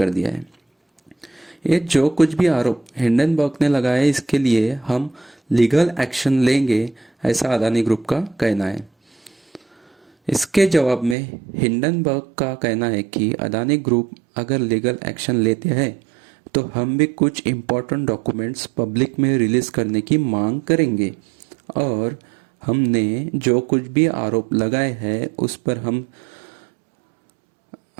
दिया है। ये जो कुछ भी आरोप हिंडनबर्ग ने लगाए, इसके लिए हम लीगल एक्शन लेंगे, ऐसा अदानी ग्रुप का कहना है। इसके जवाब में हिंडनबर्ग का कहना है कि अदानी ग्रुप अगर लीगल एक्शन लेते हैं तो हम भी कुछ इम्पोर्टेंट डॉक्यूमेंट्स पब्लिक में रिलीज करने की मांग करेंगे और हमने जो कुछ भी आरोप लगाए हैं उस पर हम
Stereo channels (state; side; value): drops out; left; at 11.2 s